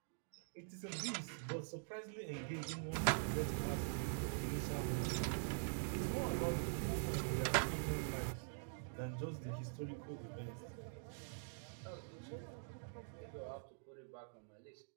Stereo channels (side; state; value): left; silent; digital silence